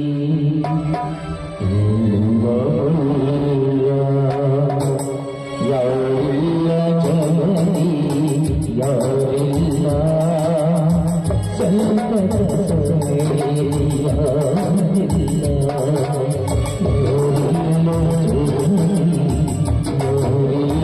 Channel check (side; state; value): both; identical; correlation 1.00